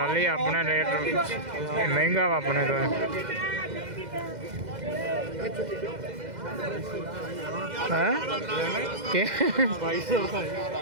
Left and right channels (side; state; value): left; late; 2.0 ms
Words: ਲਈ ਆਪਣਾ ਰੇਟ ਇਹ ਮਹਿੰਗਾ ਵਾ ਆਪਣੇ ਤੋਂ ਹਾਂ ਕਿ 2200